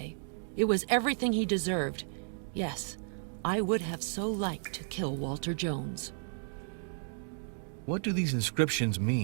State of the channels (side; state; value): left; silent; digital silence